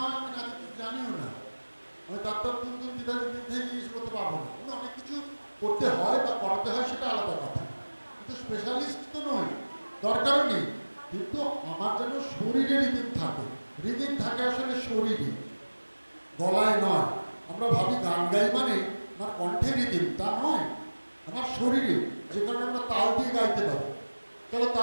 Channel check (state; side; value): inverted; both; correlation -1.00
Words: আমি নাচ কিছু জানিও না। আমি তার দিক থেকে জিনিস করতে পারবো না। কিন্তু অনেক কিছু করতে হয় বা করাতে হয়, সেটা আলাদা কথা। কিন্তু স্পেশালিস্ট তো নই, দরকারও নেই। কিন্তু আমার যেন শরীরে রিদিম থাকে। রিদিম থাকে আসলে শরীরে, গলায় নয়। আমরা ভাবি গান গাই মানে আমার কণ্ঠে রিদিম, তা নয়। আমার শরীরে, যে কারণে আমরা তাল দিয়ে গাইতে পারি। চলো